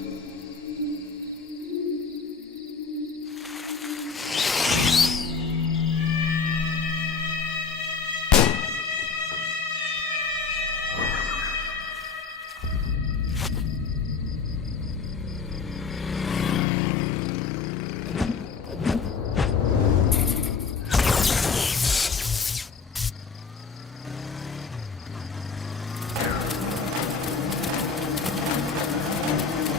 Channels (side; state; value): right; quieter; 5.1 dB